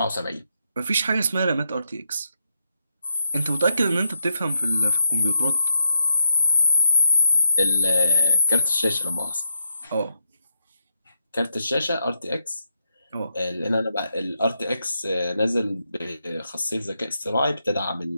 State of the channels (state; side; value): inverted; both; correlation -0.81